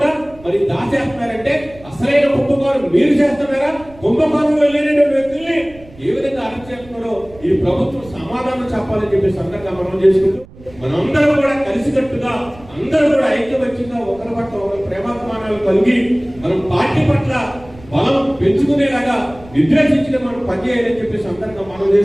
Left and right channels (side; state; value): right; noise; rumble, 22 dB below the sound